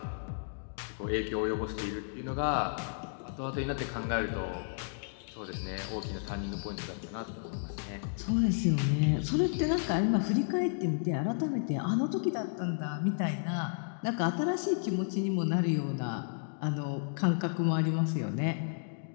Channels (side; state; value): right; silent; digital silence